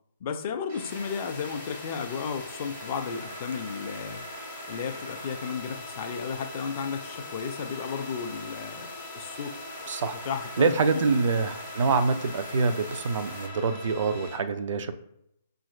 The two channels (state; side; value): inverted; both; correlation -0.61